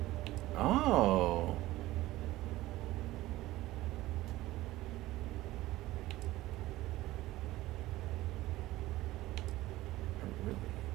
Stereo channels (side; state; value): left; quieter; 17.0 dB